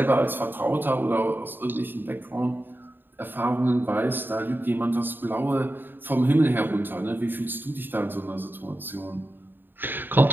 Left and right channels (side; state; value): left; late; 0.094 ms